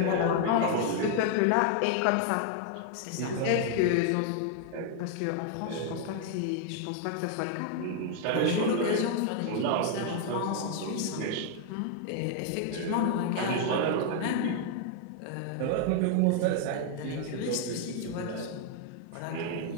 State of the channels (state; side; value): different; both; correlation 0.00